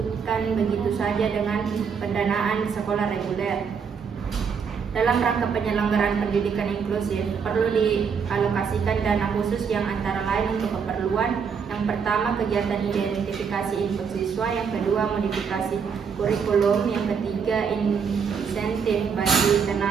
begitu saja dengan pendanaan sekolah reguler. Dalam rangka penyelenggaraan pendidikan inklusif perlu dialokasikan dana khusus yang antara lain untuk keperluan: yang pertama, kegiatan identifikasi input siswa; yang kedua, modifikasi kurikulum; yang ketiga, insentif bagi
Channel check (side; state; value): left; quieter; 6.4 dB